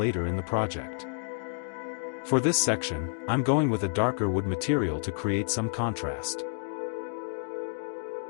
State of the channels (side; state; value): right; silent; digital silence